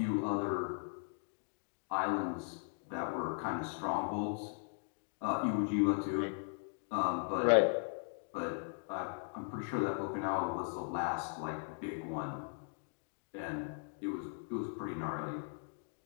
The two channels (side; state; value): right; silent; digital silence